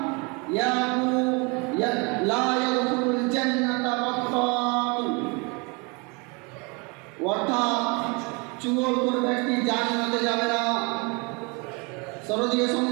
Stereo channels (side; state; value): left; quieter; 30.3 dB